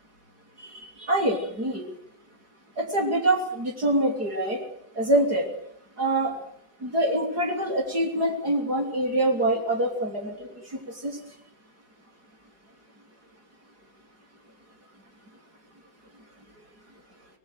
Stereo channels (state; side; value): late; left; 4.8 ms